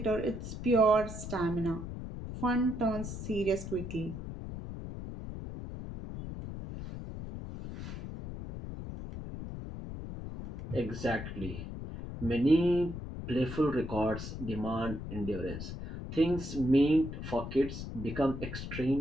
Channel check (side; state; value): left; noise; rumble, 8 dB below the sound